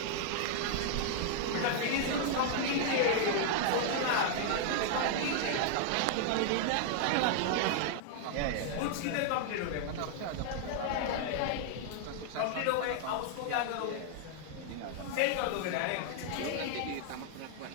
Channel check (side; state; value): both; different; correlation 0.00